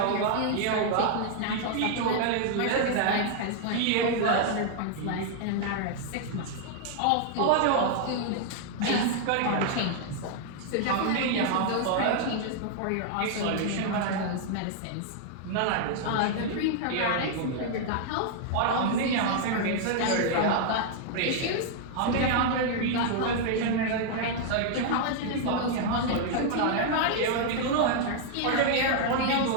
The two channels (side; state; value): both; different; correlation 0.00